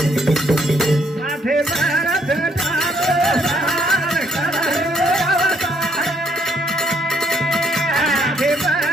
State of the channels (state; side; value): normal; both; correlation 0.70